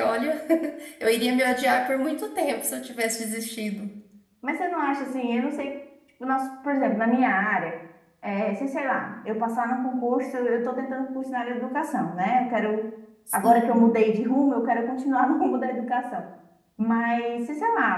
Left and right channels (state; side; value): identical; both; correlation 1.00